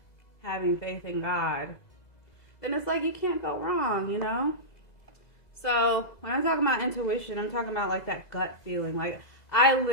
having faith in God, then it's like you can't go wrong, you know? So when I'm talking about intuition, I'm talking about like that gut feeling. Like I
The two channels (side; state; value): right; late; 2.0 ms